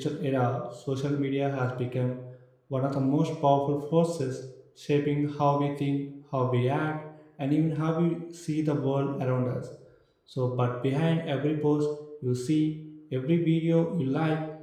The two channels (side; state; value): both; identical; correlation 1.00